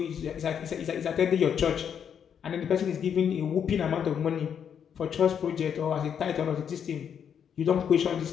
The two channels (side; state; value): right; quieter; 8.0 dB